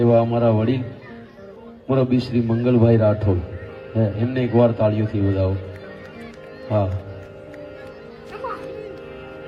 એવા અમારા વડીલ મુરબ્બી શ્રી મંગલભાઈ રાઠોડ, એમને એકવાર તાળીઓથી વધાવો. હા,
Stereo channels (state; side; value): identical; both; correlation 1.00